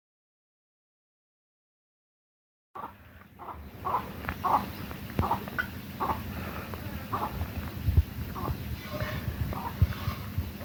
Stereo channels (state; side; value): identical; both; correlation 1.00